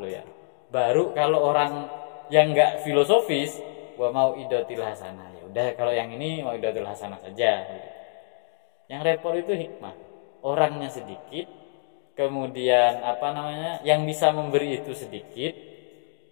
loh ya. Baru kalau orang yang nggak filosofis, wa mau idatil hasanah. Ya udah kalau yang ini mau idatil hasanah saja. Yang repot itu hikmah. Orangnya sedikit, kemudian yang bisa memberi itu sedikit.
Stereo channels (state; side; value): silent; right; digital silence